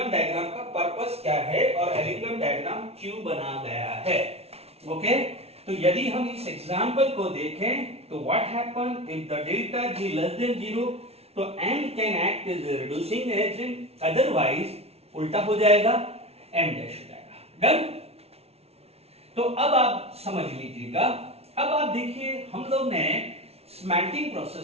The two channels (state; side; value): late; left; 0.30 ms